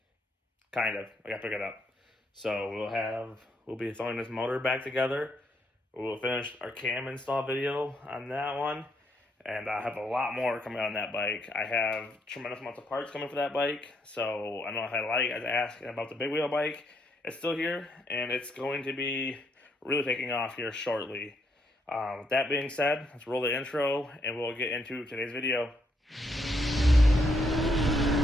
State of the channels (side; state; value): both; normal; correlation 0.75